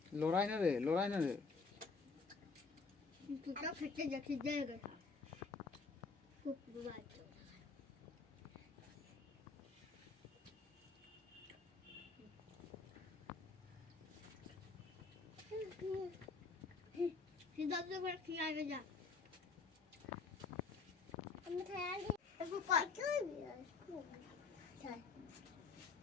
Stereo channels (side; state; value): right; quieter; 4.7 dB